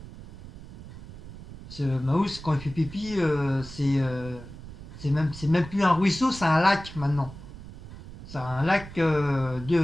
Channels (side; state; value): right; noise; rumble, 15 dB below the sound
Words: Ce Maus, quand il fait pipi, c'est même plus un ruisseau, c'est un lac maintenant. C'est un lac